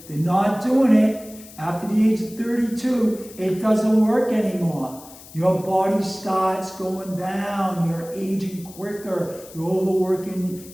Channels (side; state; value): left; noise; hiss, 19 dB below the sound